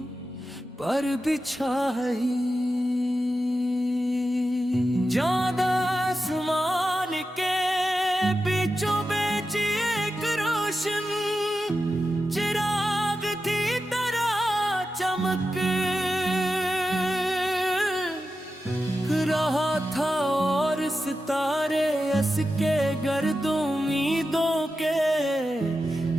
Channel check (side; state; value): both; normal; correlation 0.91